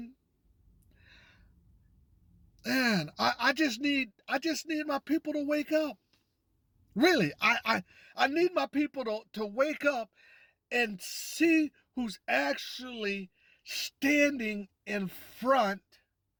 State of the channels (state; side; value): identical; both; correlation 1.00